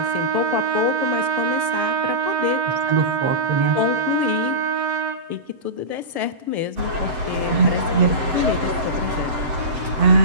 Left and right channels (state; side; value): late; left; 7.8 ms